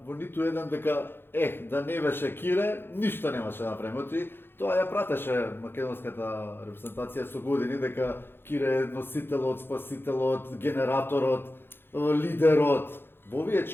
во ниту еден дека да не беше Кире, ништо немаше да направиме. Оти тоа ја пратеше македонската репрезентација со години дека Кире е носителот, спасителот, генераторот, лидерот. Во овие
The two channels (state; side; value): late; right; 0.10 ms